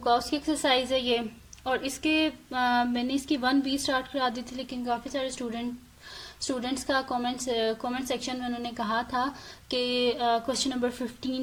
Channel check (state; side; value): identical; both; correlation 1.00